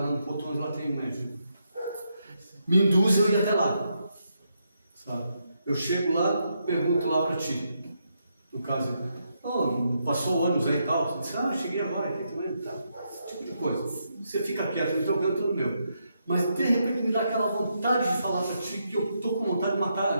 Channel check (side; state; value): both; inverted; correlation -0.80